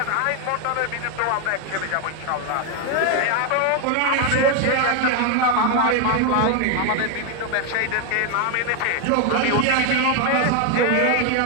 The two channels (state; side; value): different; both; correlation 0.01